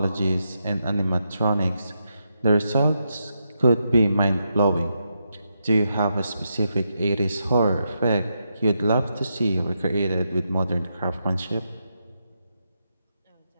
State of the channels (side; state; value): both; inverted; correlation -0.83